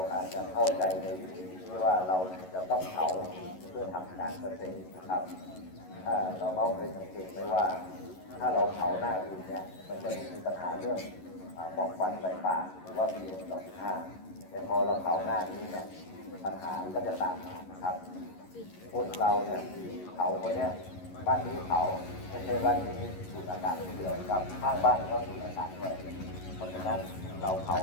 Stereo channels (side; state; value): right; late; 11 ms